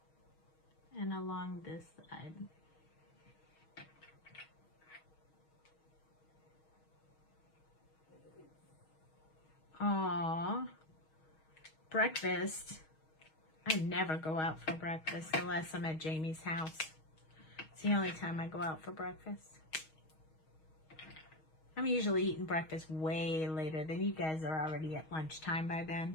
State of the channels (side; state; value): right; late; 6.3 ms